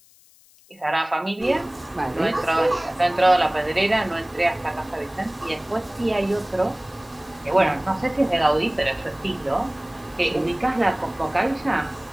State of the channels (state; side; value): noise; left; hiss, 28 dB below the sound